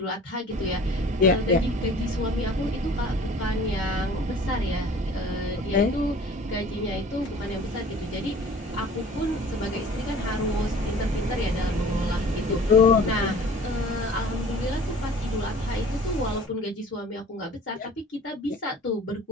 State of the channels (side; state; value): both; normal; correlation 0.47